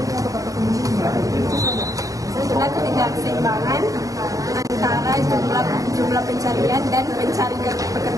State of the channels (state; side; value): late; left; 0.17 ms